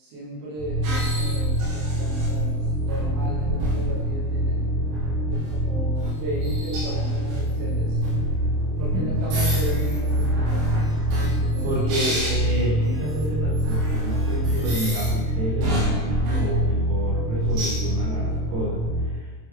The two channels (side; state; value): left; late; 27 ms